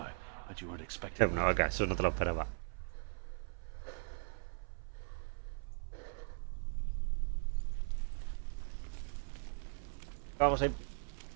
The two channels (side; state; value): left; silent; 51 dB below the other